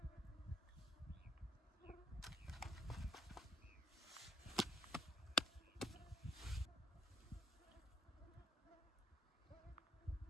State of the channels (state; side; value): normal; both; correlation 0.72